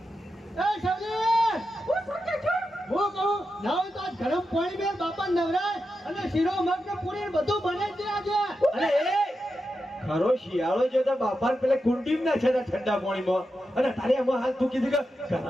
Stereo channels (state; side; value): normal; both; correlation 0.89